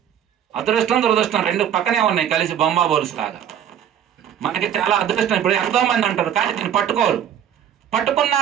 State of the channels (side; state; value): left; quieter; 9.6 dB